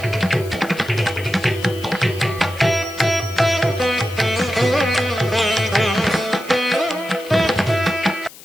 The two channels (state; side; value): noise; left; hiss, 19 dB below the sound